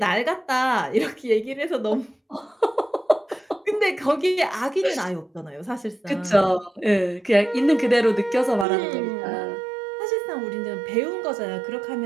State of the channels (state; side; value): drops out; left; at 8.7 s